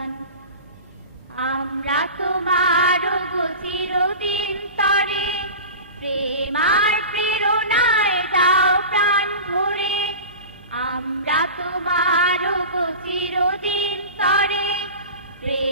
আমরা তোমার গো চিরদিন তরে প্রেম আর প্রেরণায় দাও প্রাণ ভরে আমরা তোমার গো চিরদিন তরে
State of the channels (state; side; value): inverted; both; correlation -0.32